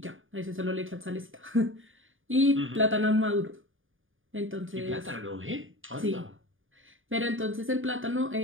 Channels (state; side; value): late; left; 0.58 ms